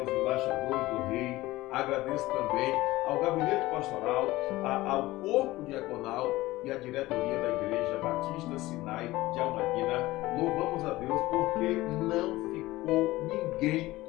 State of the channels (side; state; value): right; quieter; 18.2 dB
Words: embaixadores do Rei, agradeço também ao Gabinete Pastoral, ao Corpo Diaconal e à diretoria da Igreja Batista Sinai de Almadina. Louvamos a Deus porque não ficou ninguém